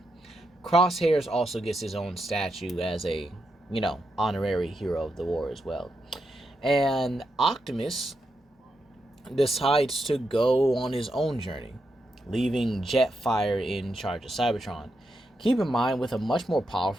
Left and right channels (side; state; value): both; normal; correlation 0.84